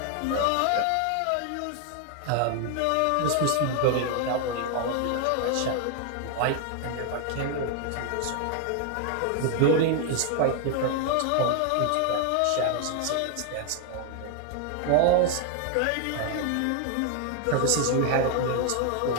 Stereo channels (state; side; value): different; both; correlation 0.00